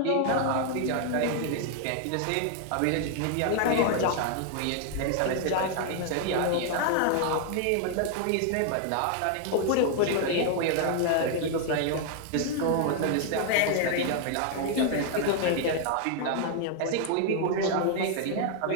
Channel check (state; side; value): different; both; correlation 0.00